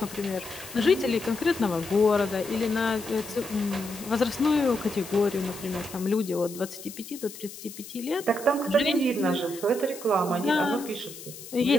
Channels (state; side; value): noise; left; hiss, 14 dB below the sound